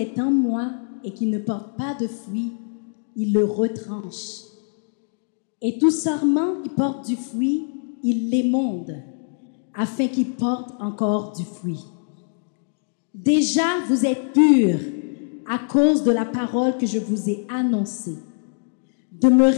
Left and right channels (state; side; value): silent; right; 63 dB below the other